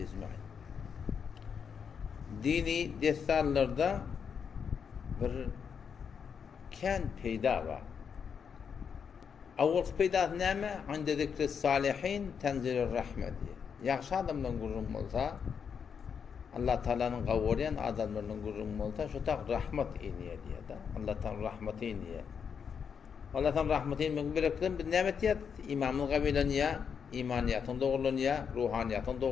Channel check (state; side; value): quieter; right; 6.8 dB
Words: ecmaîn. Dini destanlarda bir kan peyda var. Avval peyda näme? Inde zikri salihin tenzilur rahmet diye. Yaxşı adamdan gurrum olsa, Allah Teala'nın qavurayan adamlarının gurrum olsa, şu tak rahmet iniye diye da. Allah'tan rahmeti iniye. Allah'tan rahmeti iniye. Bir nimet ya, imamın qabilaniye, imaniyatın doğrulunuya, ruhaniyatın